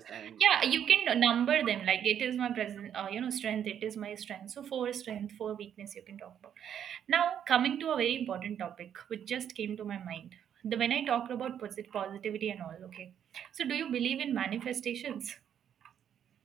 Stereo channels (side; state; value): left; quieter; 9.2 dB